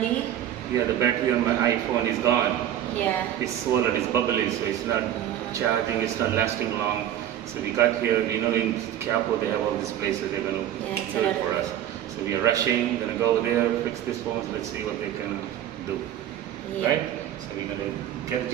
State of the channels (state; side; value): quieter; left; 11.3 dB